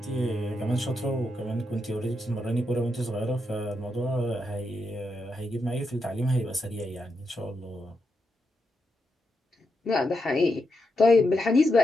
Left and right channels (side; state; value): both; normal; correlation 0.84